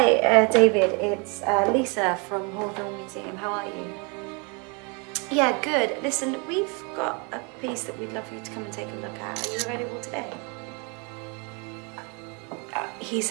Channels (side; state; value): left; quieter; 33.0 dB